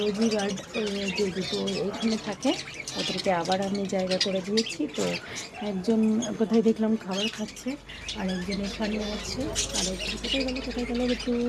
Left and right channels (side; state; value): both; identical; correlation 1.00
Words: গার্ড যে দুটো এইখানে থাকে, ওদেরকে আবার আমি জায়গা করে দিয়েছি। তো একজন কোথায় দেখলাম খাবার খাচ্ছে, আর একজন এখানে আছে, আর একজন কোথায় গেল একটু।